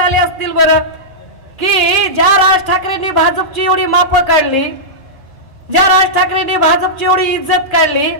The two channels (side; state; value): both; normal; correlation -0.13